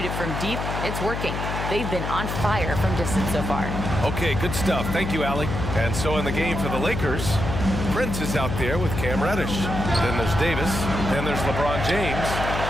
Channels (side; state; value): left; noise; hum, 4 dB below the sound